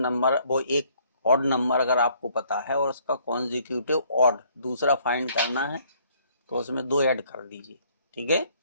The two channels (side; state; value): both; inverted; correlation -0.63